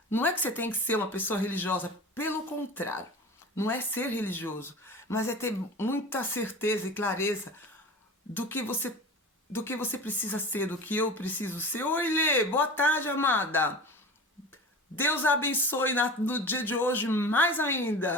Não é que você tem que ser uma pessoa religiosa, pelo contrário. Não é ser religioso, mas é ter muita certeza e clareza do que você precisa ser, do que eu preciso ser. Oi, Lê, boa tarde, amada. Deus abençoe no dia de hoje mais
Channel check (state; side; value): normal; both; correlation 0.34